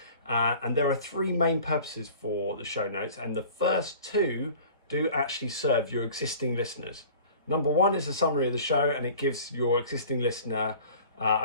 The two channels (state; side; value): inverted; both; correlation -0.44